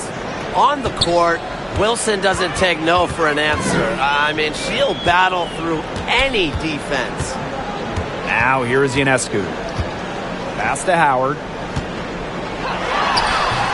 On the court, Wilson doesn't take no for an answer. I mean, she'll battle through any defense. Now here's Ionescu. Pass to Howard.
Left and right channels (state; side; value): identical; both; correlation 1.00